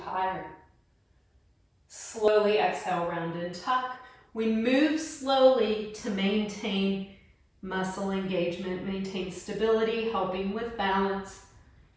higher. Slowly exhale, round and tuck. We move slowly to maintain muscle engagement, maintain stability, helping with balance.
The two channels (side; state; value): both; identical; correlation 1.00